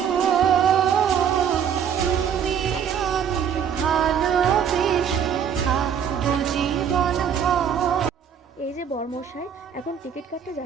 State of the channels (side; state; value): left; quieter; 8.1 dB